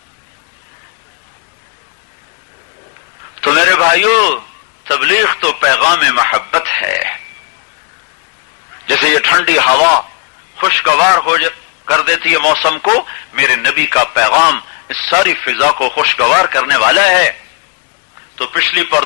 تو میرے بھائیو، تبلیغ تو پیغام محبت ہے۔ جیسے یہ ٹھنڈی ہوا خوشگوار کر دیتی ہے موسم کو، میرے نبی کا پیغام اس ساری فضا کو خوشگوار کرنے والا ہے۔ تو پچھلی پر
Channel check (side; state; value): right; quieter; 37.7 dB